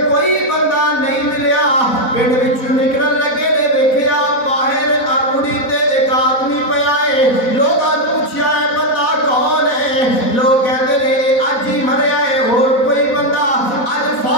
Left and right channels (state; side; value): late; right; 4.0 ms